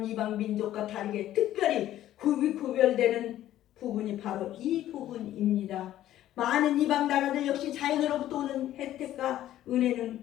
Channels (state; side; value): quieter; right; 13.0 dB